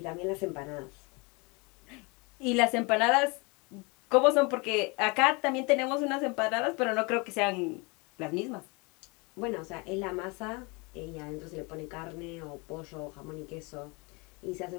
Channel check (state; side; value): quieter; right; 28.5 dB